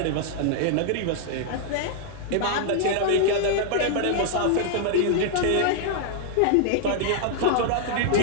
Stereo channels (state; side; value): different; both; correlation -0.01